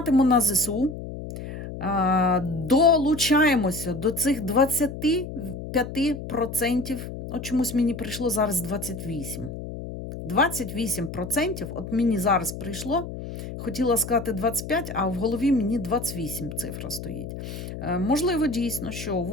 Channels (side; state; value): left; noise; hum, 9 dB below the sound